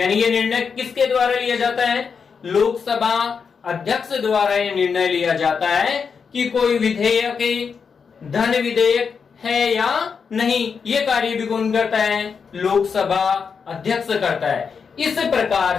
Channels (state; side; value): quieter; right; 6.0 dB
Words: ये निर्णय किसके द्वारा लिया जाता है? लोकसभा अध्यक्ष द्वारा ये निर्णय लिया जाता है कि कोई विधेयक धन विधेयक है या नहीं। ये कार्य भी कौन करता है? लोकसभा अध्यक्ष करता है। इस